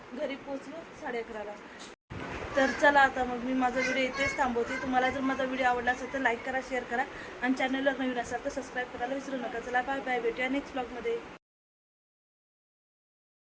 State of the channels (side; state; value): both; identical; correlation 1.00